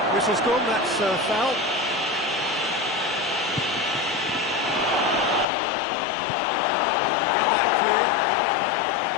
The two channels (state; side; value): drops out; right; at 5.5 s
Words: Whistle's gone, that's a foul. Get that clear.